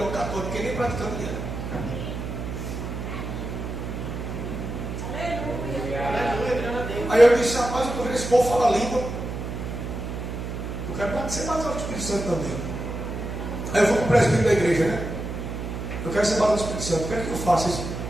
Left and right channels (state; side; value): noise; right; hum, 5 dB below the sound